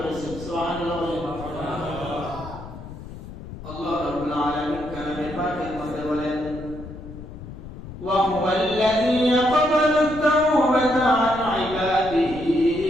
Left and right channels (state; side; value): noise; left; rumble, 13 dB below the sound